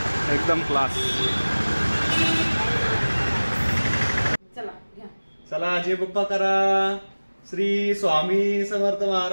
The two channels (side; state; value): both; inverted; correlation -1.00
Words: एकदम क्लास. चला जय बाप्पा करा. श्री स्वामी समर्थ